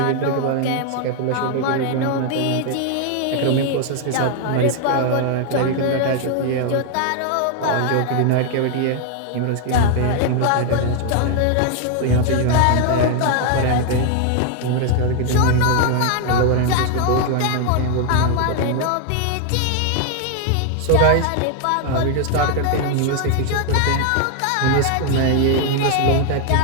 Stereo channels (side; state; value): both; different; correlation 0.00